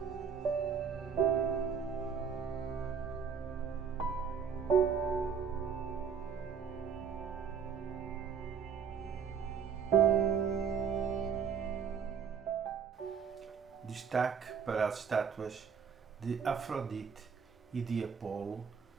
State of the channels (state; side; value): quieter; left; 6.8 dB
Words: Destaque para as estátuas de Afrodite e de Apolo,